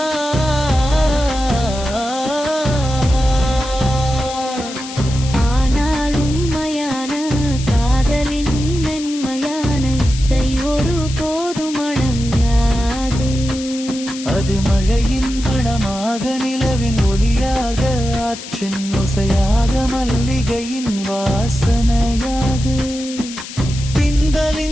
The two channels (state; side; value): noise; left; hiss, 12 dB below the sound